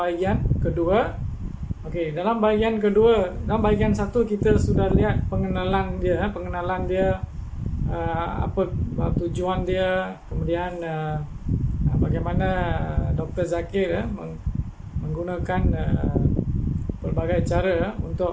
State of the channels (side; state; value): both; identical; correlation 1.00